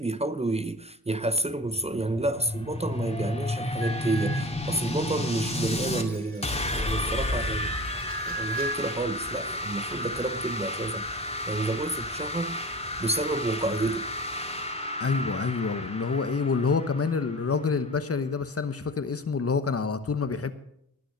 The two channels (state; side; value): normal; both; correlation 0.38